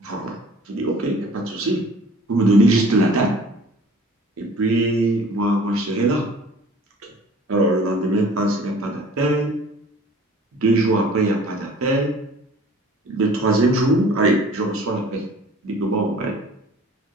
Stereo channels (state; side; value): normal; both; correlation 0.48